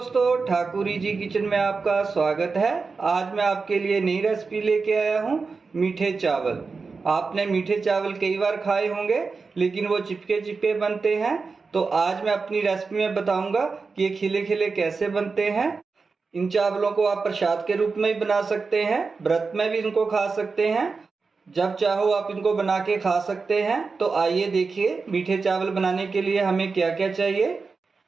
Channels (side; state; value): left; quieter; 4.5 dB